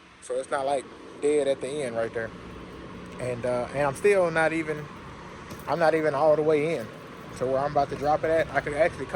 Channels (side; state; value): both; identical; correlation 1.00